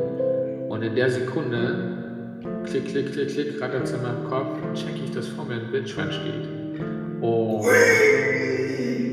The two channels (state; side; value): identical; both; correlation 1.00